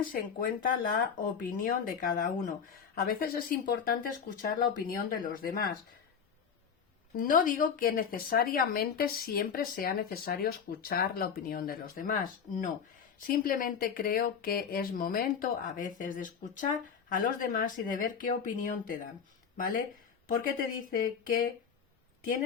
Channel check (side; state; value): right; quieter; 6.9 dB